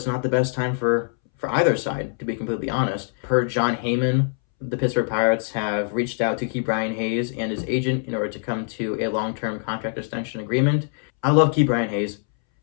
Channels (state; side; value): silent; right; 63 dB below the other